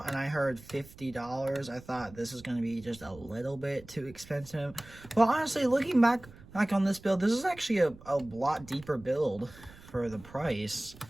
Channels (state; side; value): noise; right; rumble, 20 dB below the sound